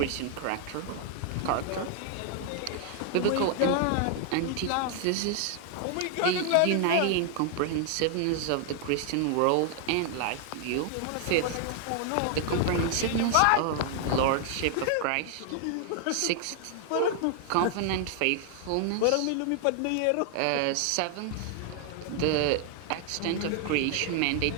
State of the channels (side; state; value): both; different; correlation 0.00